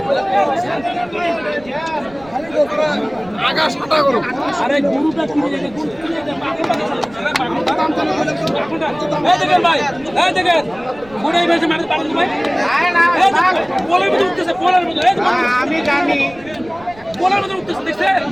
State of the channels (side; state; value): right; noise; rumble, 22 dB below the sound